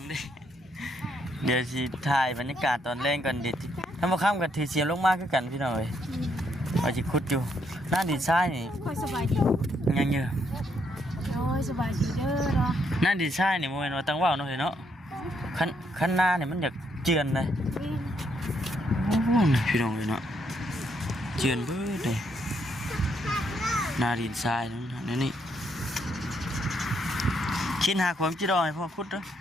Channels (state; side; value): normal; both; correlation 0.74